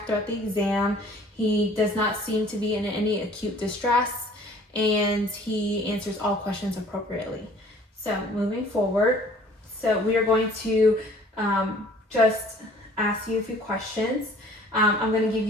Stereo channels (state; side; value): normal; both; correlation 0.53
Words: throughout the exam. He does not seem to be in any acute distress, and he answers all questions appropriately. So moving forward, so we are going to just ask you a few questions. I'm going to give